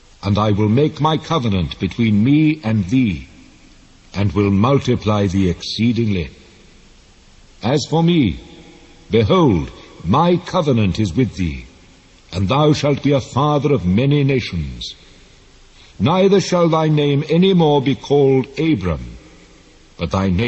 And I will make my covenant between me and thee, and will multiply thee exceedingly. As for me, behold, my covenant is with thee, and thou shalt be a father of many nations. Neither shall thy name any more be called Abram, but thy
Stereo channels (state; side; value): identical; both; correlation 1.00